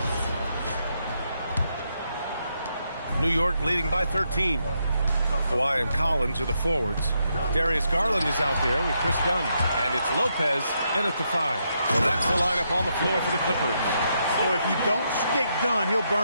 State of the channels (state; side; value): inverted; both; correlation -0.80